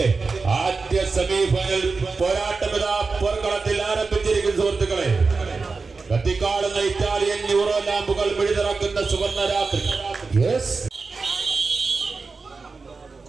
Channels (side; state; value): left; quieter; 4.3 dB